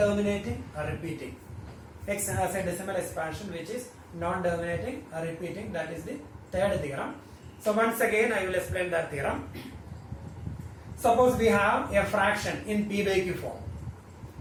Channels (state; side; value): identical; both; correlation 1.00